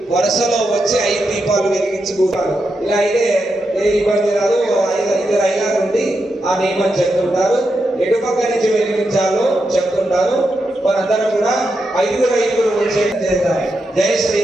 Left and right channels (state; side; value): normal; both; correlation 0.86